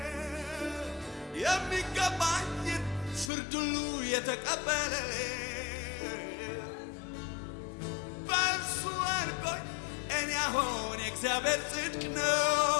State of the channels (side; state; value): right; drops out; at 3.3 s